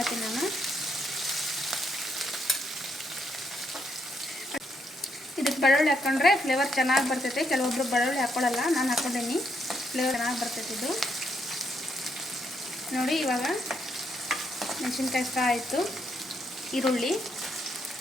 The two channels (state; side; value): normal; both; correlation 0.76